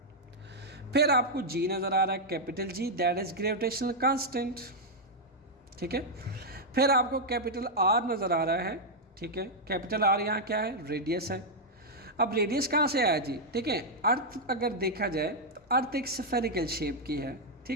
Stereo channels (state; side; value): normal; both; correlation -0.03